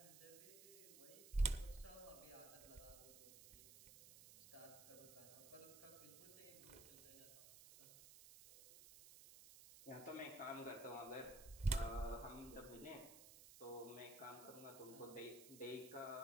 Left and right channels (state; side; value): noise; right; hiss, 15 dB below the sound